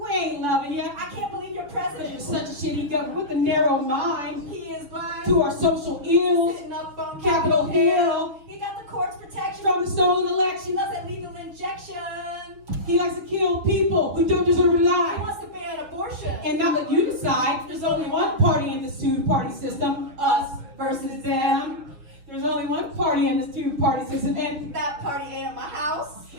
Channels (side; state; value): left; late; 7.0 ms